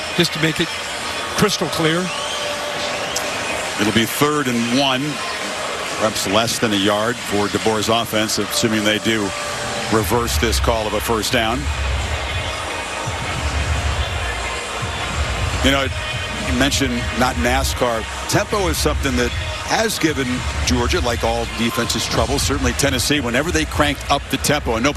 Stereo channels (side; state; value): both; identical; correlation 1.00